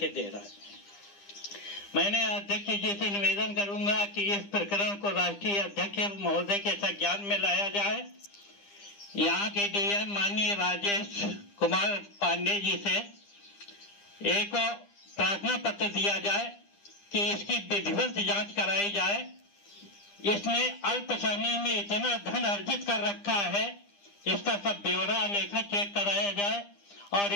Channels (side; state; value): right; late; 9.9 ms